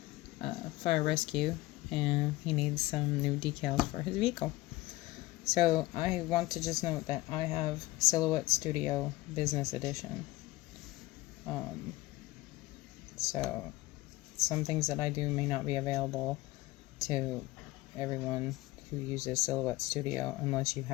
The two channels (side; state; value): right; quieter; 19.0 dB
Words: a fire rescue and he needs some new decals for his vehicle. So I want to just note that I have Silhouette Studio Business Edition. So some things that I do may not be available to everyone who uses Silhouette Studio unless you